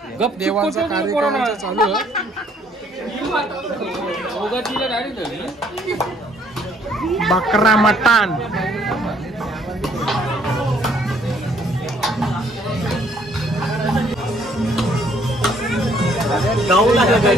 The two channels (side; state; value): both; normal; correlation 0.64